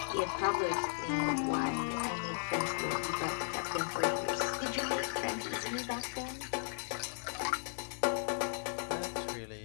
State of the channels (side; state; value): right; silent; digital silence